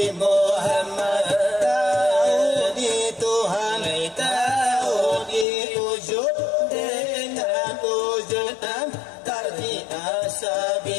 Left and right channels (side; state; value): right; drops out; at 5.5 s